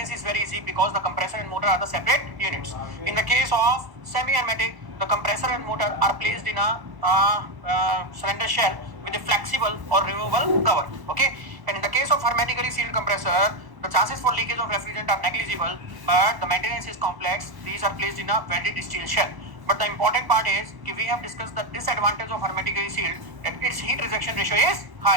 is very easy because the compressor and motor are the separate units. In the case of semi-hermetic, the compressor and motor are placed in a cylinder shell with a flexible or removable cover. Okay. And in the case of hermetically sealed compressor, the chances for leakage of refrigerant are negligible, but the maintenance is complex. These are placed in a welded steel shell. But the important part is we have discussed the disadvantage of hermetically sealed, that its heat rejection ratio is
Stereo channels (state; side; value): late; left; 1.1 ms